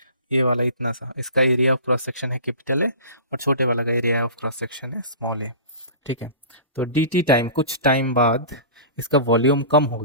ये वाला इतना सा, इसका एरिया ऑफ क्रॉस सेक्शन है कैपिटल ए और छोटे वाला का एरिया ऑफ क्रॉस सेक्शन है स्मॉल ए। ठीक है, तो डी टी टाइम, कुछ टाइम बाद इसका वॉल्यूम कम हो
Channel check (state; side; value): inverted; both; correlation -0.37